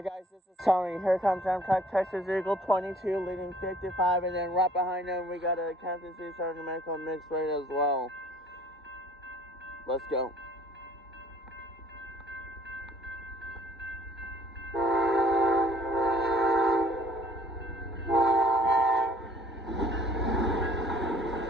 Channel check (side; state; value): both; normal; correlation 0.55